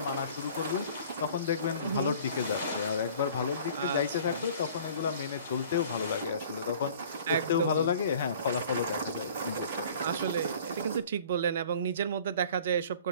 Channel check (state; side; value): inverted; both; correlation -0.48